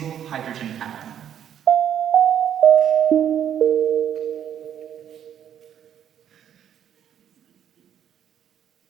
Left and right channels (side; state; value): left; quieter; 9.6 dB